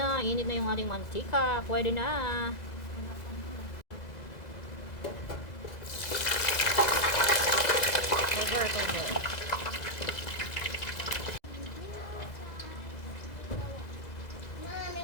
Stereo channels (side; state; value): right; late; 2.0 ms